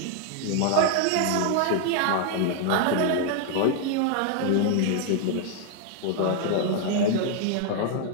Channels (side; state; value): both; different; correlation 0.00